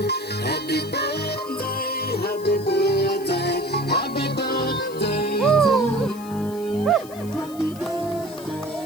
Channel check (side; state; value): left; noise; hiss, 19 dB below the sound